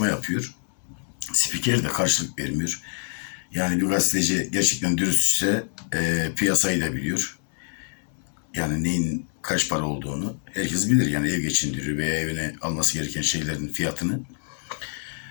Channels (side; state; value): right; silent; 56 dB below the other